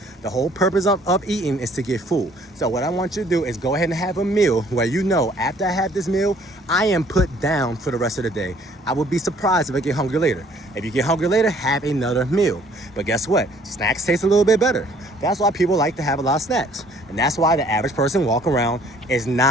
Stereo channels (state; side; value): normal; both; correlation 0.59